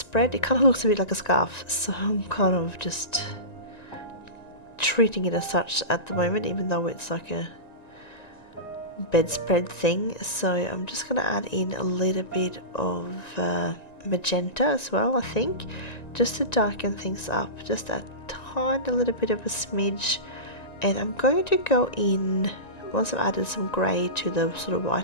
It kind of looks a bit like a scarf, so I'm kind of just treating it as such at the moment, even though it's like a bedspread thing. So I'm just going to add in a little bit of magenta as well, I think, just to darken things up, just a tiny little bit of a smidge. And I'm going to go in, once I've added some grey to the sort of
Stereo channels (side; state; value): right; late; 1.9 ms